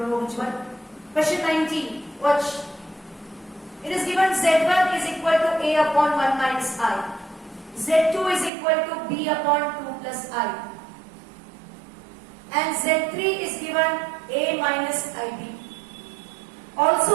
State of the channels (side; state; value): left; drops out; at 8.5 s